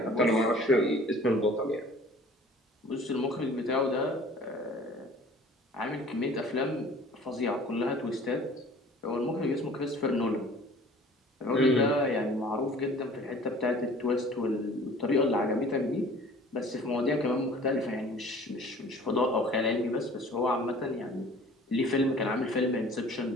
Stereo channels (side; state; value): both; normal; correlation 0.48